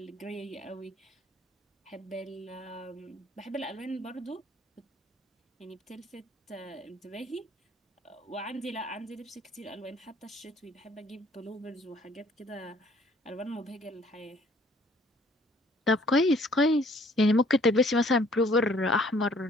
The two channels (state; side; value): normal; both; correlation 0.59